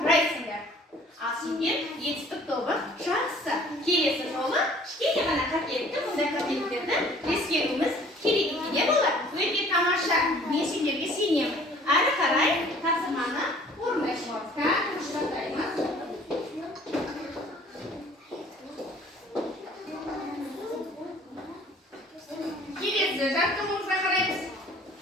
Ал сендер етістік тобы жақсы. Келесі жолы кішкене ғана қателікті, мұндай қателіктерді ескеруіміз керек екен болар. Өте тамаша. Мен сендерге сенемін. Әрі қарай тапсырманы орындайсыңдар. Құшақтаймыз. Келесі жаттығуымызға қараймыз.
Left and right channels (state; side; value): normal; both; correlation 0.53